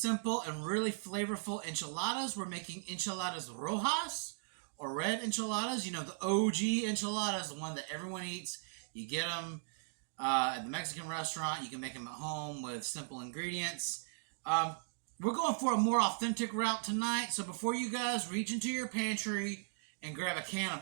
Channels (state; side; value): silent; left; digital silence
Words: and really flavorful enchiladas. We're making enchiladasrojas, or red enchiladas. You know, the OG enchiladas, the one that everyone eats. You get them at the Mexican restaurant. You can make them at home with simple ingredients. We're going for a more authentic route tonight. So before you guys reach into your pantry and grab a can